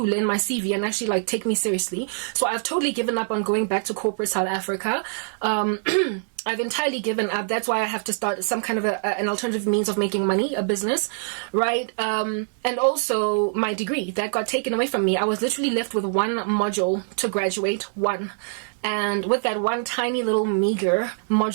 in my CV and actually, take me seriously. So I've totally given up on going back to corporate South Africa. I've entirely given up. That's why I have to start some kind of an alternative means of making money, a business, right? And also my degree that got taken away from me. I was literally left with one module to graduate, one. And with that one tiny little meager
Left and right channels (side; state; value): left; silent; 63 dB below the other